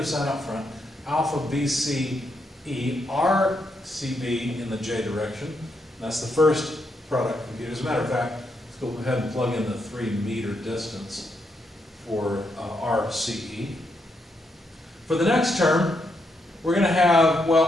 sign up front. Alpha BCE, RCB in the j direction. That's the first product computed. As a matter of fact, let's go ahead and plug in the 3 meter distance for RCE. For the next term, we're going to have,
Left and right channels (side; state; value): both; normal; correlation 0.79